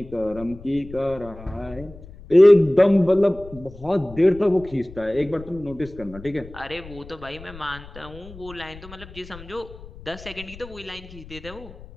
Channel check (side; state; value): left; noise; rumble, 17 dB below the sound